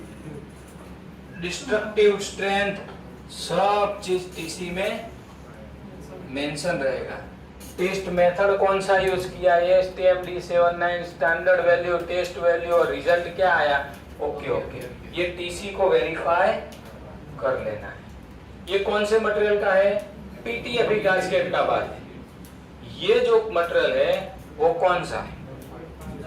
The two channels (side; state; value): both; identical; correlation 1.00